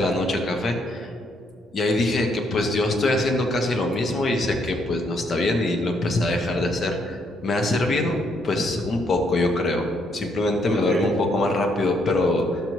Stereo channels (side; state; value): both; normal; correlation 0.73